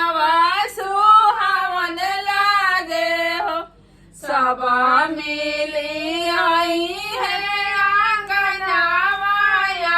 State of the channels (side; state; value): both; identical; correlation 1.00